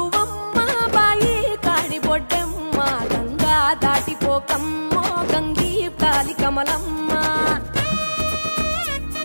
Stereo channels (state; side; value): inverted; both; correlation -1.00